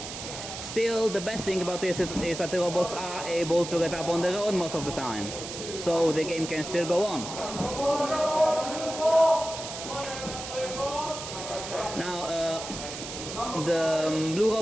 Still, the best thing about this is that the robots are able to get up on their own most of the time, so the game can still go on. Now, the blue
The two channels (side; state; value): right; noise; hiss, 9 dB below the sound